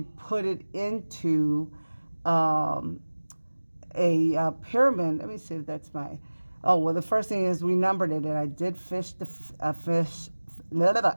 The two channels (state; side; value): inverted; both; correlation -1.00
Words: put it into a pyramid. Let me see if that's my... Oh, well, the first thing is we numbered it, and I did fish the fish...